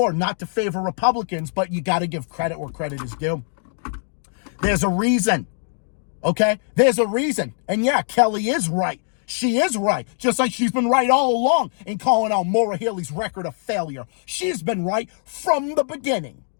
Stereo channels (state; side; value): silent; right; digital silence